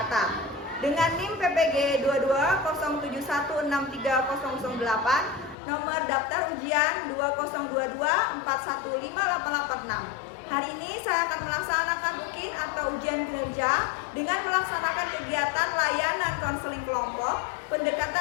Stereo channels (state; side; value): drops out; right; at 5.6 s